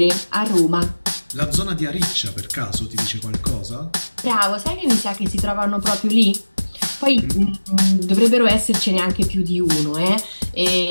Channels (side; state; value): both; inverted; correlation -1.00